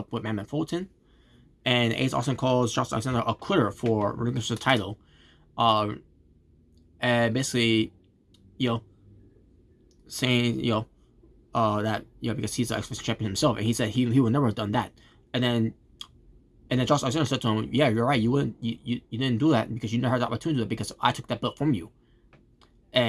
with Madman Fulton. And Ace Austin calls Josh Alexander a quitter for relinquishing the title, and basically, saying that because he's the X Division champion himself, and he said he would never have done that. And then Josh Alexander said to him, "Yeah, you're right. You didn't do that because you never had the opportunity to do it, because I took that belt from you."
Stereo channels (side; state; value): both; identical; correlation 1.00